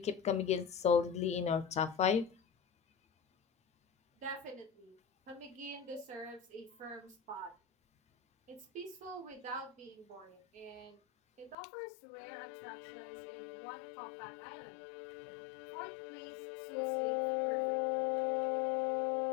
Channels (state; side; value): drops out; right; at 11.6 s